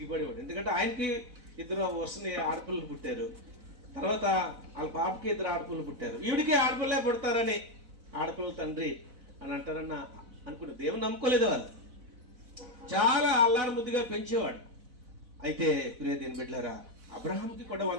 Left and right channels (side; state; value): left; late; 4.0 ms